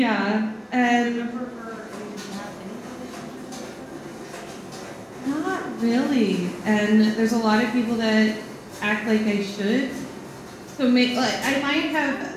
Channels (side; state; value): both; identical; correlation 1.00